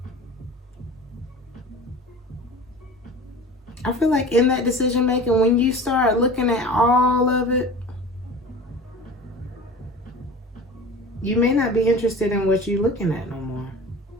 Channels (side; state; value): both; normal; correlation 0.38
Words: I feel like in that decision making, when you start looking at all of it, you may not be interested in what you're looking at no more.